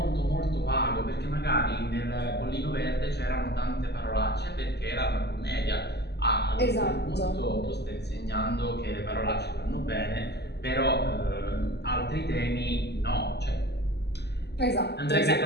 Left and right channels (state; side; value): late; right; 0.49 ms